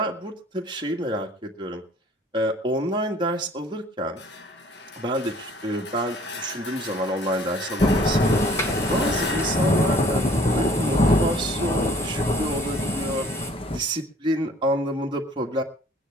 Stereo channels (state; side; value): normal; both; correlation 0.55